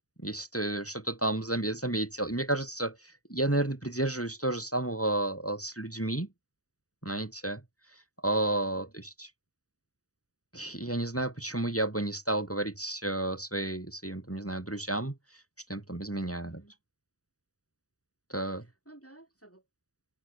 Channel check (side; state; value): right; late; 0.66 ms